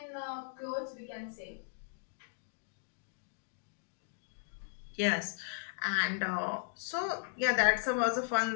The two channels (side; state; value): right; silent; digital silence